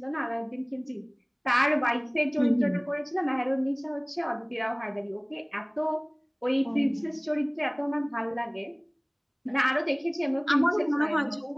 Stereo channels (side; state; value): both; identical; correlation 1.00